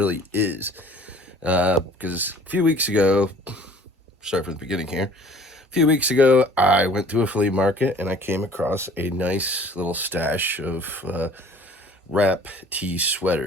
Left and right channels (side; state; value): both; normal; correlation 0.51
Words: is. Because a few weeks ago, start from the beginning here. A few weeks ago, I went to a flea market and I came across a nice little stash of wrap tee